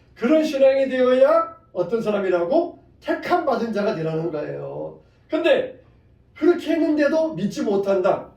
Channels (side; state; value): both; identical; correlation 1.00